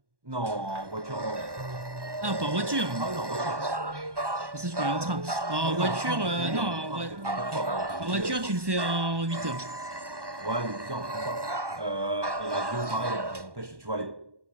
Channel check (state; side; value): late; left; 1.1 ms